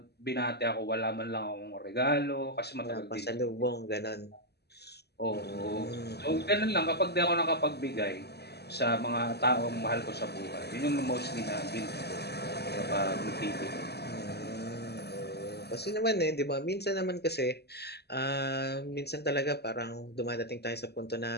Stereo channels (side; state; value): right; late; 0.48 ms